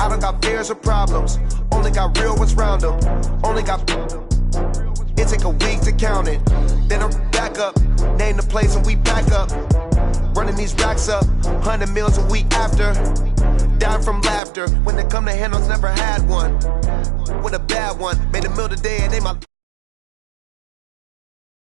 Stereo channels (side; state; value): left; drops out; at 14.4 s